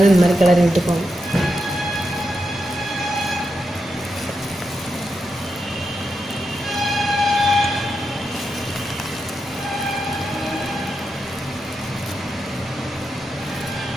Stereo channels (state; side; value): normal; both; correlation 0.86